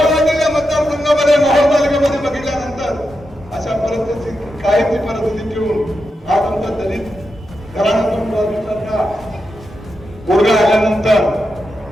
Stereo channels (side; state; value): both; normal; correlation 0.87